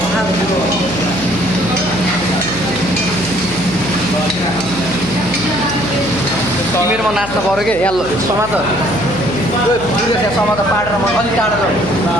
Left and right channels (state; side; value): noise; left; hum, 12 dB below the sound